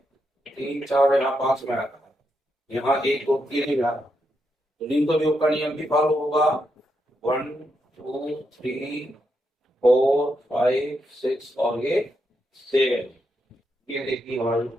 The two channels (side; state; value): both; normal; correlation 0.82